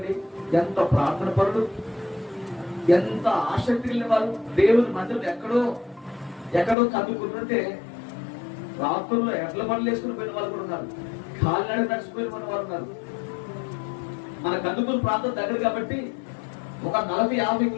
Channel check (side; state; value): right; drops out; at 6.8 s